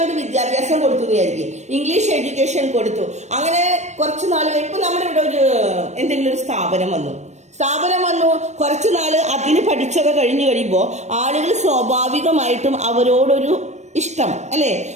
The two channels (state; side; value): late; left; 0.33 ms